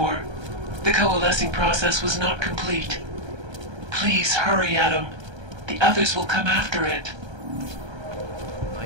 The coalescing process was not complete. Please hurry, Adam. The others will come after it.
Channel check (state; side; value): late; left; 1.3 ms